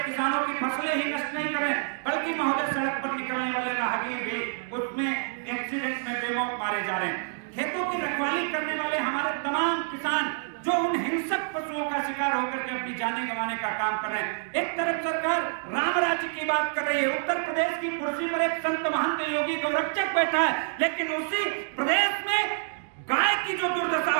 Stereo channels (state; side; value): silent; left; digital silence